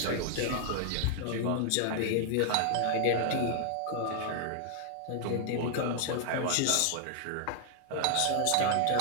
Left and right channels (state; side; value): different; both; correlation 0.00